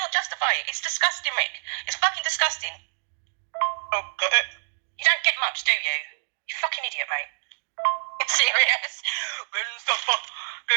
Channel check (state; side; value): silent; left; digital silence